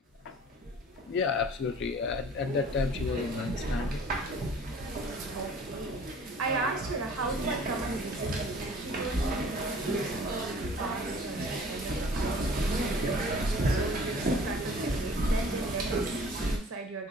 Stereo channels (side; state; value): both; normal; correlation 0.49